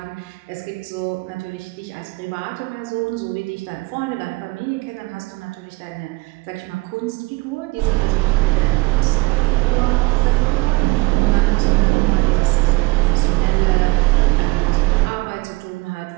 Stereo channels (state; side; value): quieter; left; 23.1 dB